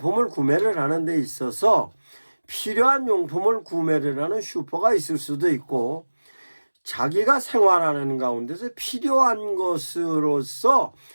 구매를 하는 데 있어서 필요한 용품을 구매를 하는 슈퍼가 있을 수도 있고, 자기가 생활하는 가운데서 필요한 것으로서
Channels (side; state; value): both; inverted; correlation -1.00